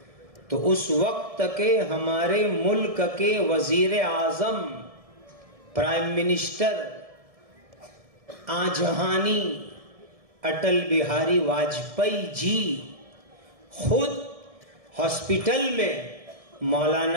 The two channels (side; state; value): left; late; 1.7 ms